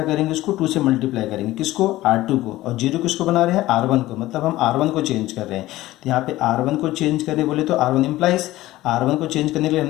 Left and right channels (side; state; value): right; quieter; 16.6 dB